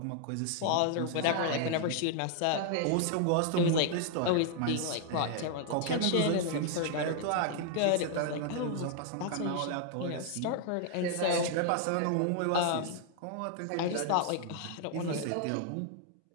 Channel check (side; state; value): both; different; correlation 0.00